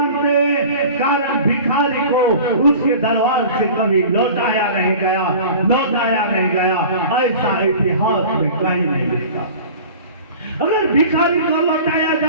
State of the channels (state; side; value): inverted; both; correlation -0.40